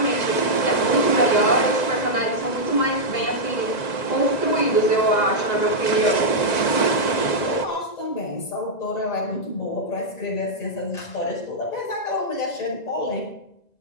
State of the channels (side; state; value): right; late; 1.9 ms